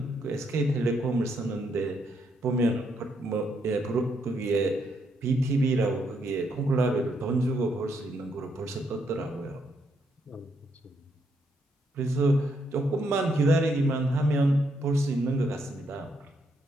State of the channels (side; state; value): both; normal; correlation 0.76